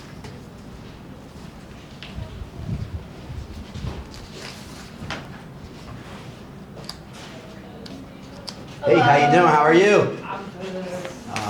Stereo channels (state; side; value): identical; both; correlation 1.00